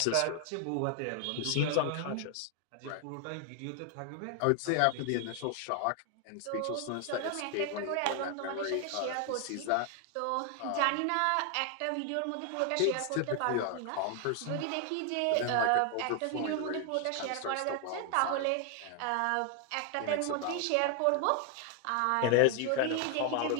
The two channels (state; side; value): different; both; correlation 0.00